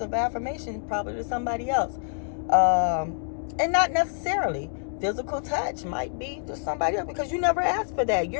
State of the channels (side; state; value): right; silent; digital silence